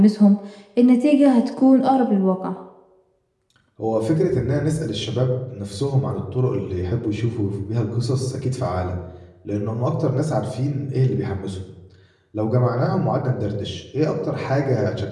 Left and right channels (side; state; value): both; identical; correlation 1.00